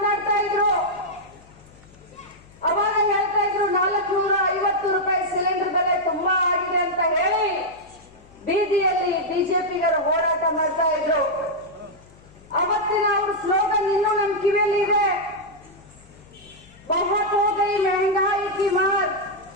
ಇದ್ರು. ಅವಾಗ ಹೇಳ್ತಾ ಇದ್ರು 450 ರೂಪಾಯಿ ಸಿಲಿಂಡರ್ ಬೆಲೆ ತುಂಬಾ ಆಗಿದೆ ಅಂತ ಹೇಳಿ ಬೀದಿಯಲ್ಲಿ ಬಿಜೆಪಿಗರು ಹೋರಾಟ ಮಾಡ್ತಾ ಇದ್ರು. ಅವತ್ತಿನ ಅವ್ರ ಸ್ಲೋಗನ್ ಇನ್ನೂ ನಮ್ ಕಿವಿಯಲ್ಲಿ ಇದೆ. ಬಹುತ್ ಹೋ ಗೈ ಮೆಹಂಗಾಯಿ ಕಿ ಮಾರ್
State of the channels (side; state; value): left; noise; hum, 26 dB below the sound